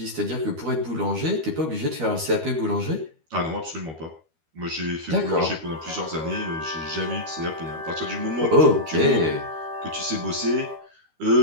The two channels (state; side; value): late; left; 13 ms